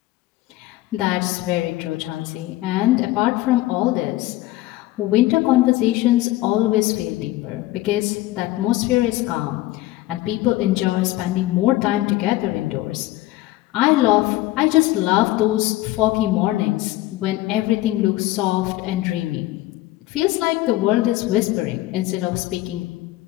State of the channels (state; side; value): quieter; right; 17.0 dB